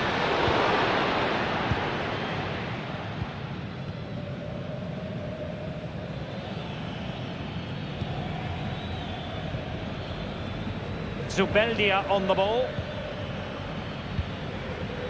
Zubeldia on the ball.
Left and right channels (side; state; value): both; identical; correlation 1.00